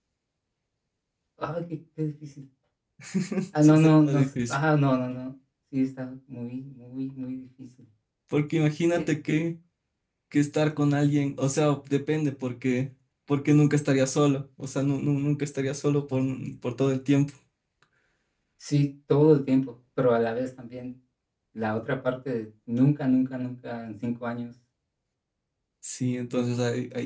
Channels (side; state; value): both; identical; correlation 1.00